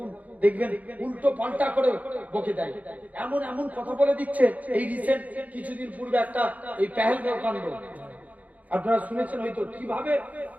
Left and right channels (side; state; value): left; late; 0.075 ms